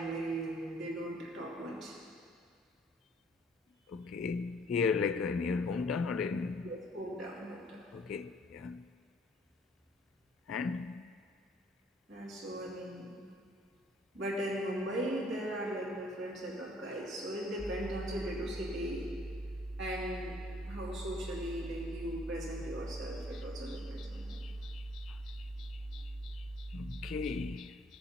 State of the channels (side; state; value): both; normal; correlation 0.60